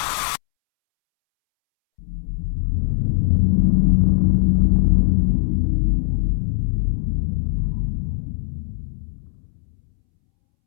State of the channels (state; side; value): silent; right; 66 dB below the other